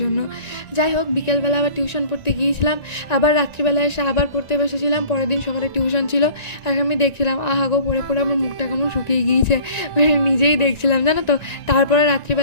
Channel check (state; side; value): late; right; 1.9 ms